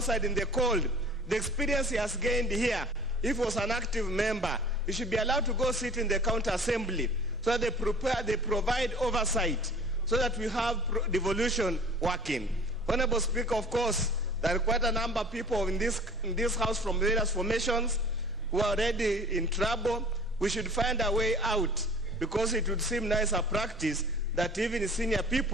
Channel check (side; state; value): both; normal; correlation 0.46